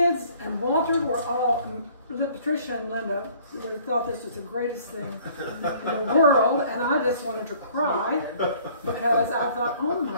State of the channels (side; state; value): both; inverted; correlation -0.55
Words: and Walter were all, Patricia and Linda, they thought this was the greatest thing in the world, and I just wanted to cry because I thought, oh